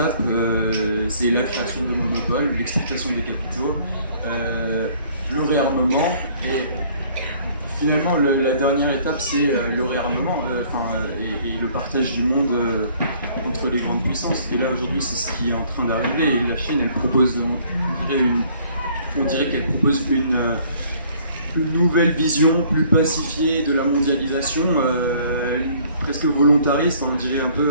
C'est la création de monopoles, l'exportation des capitaux, le réarmement. Et finalement, la dernière étape, c'est le réarmement et le partage du monde entre les grandes puissances. Et là, aujourd'hui, c'est ce qui est en train d'arriver. Et la Chine, elle propose, on dirait qu'elle propose une nouvelle vision plus pacifiée de la mondialisation, presque volontariste, on dirait un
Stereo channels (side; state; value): both; inverted; correlation -0.58